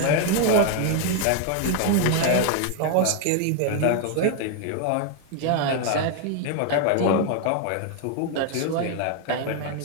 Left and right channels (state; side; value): different; both; correlation 0.01